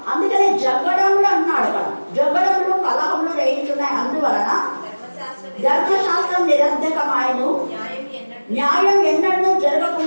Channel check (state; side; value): inverted; both; correlation -1.00